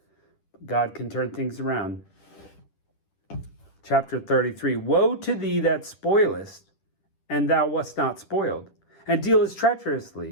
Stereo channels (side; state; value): right; late; 10 ms